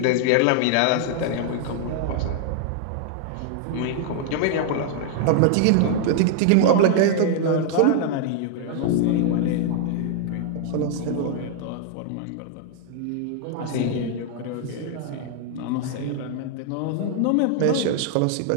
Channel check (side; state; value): both; different; correlation 0.00